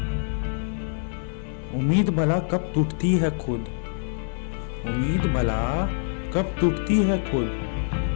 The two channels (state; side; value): silent; right; digital silence